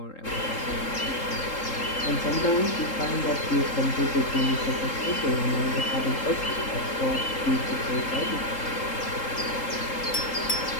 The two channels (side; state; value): right; late; 3.7 ms